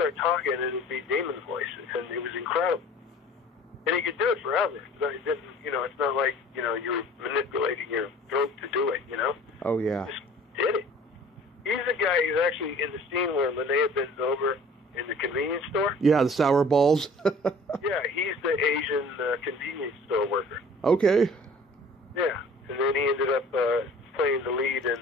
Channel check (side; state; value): both; normal; correlation 0.48